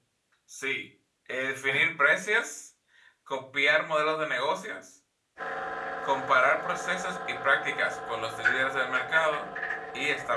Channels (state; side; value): identical; both; correlation 1.00